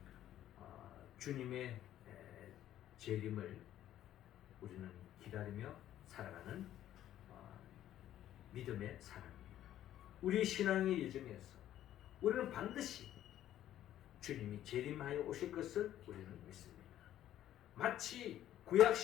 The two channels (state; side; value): quieter; right; 12.2 dB